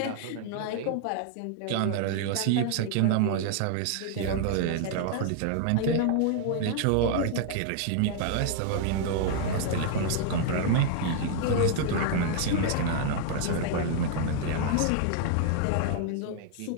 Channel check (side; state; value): both; different; correlation 0.00